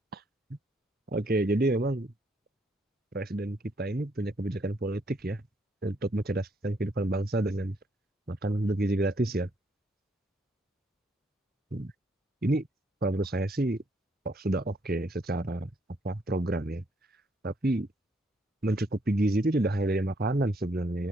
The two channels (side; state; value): both; normal; correlation 0.71